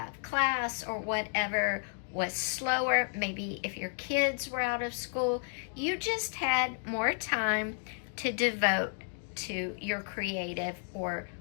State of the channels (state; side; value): silent; right; 56 dB below the other